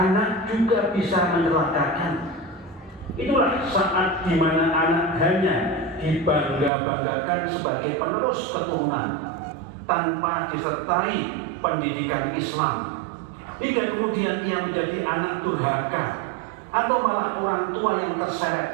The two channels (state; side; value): drops out; left; at 6.7 s